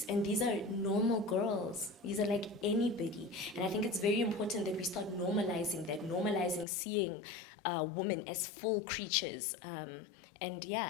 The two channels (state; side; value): drops out; right; at 6.7 s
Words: and these are normal girls, these are like anybody, and I think it's very important that we start normalizing that, normalizing seeing women as full creatures, and